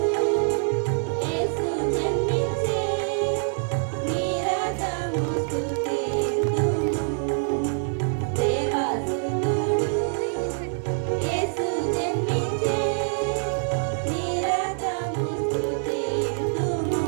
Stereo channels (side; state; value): left; silent; digital silence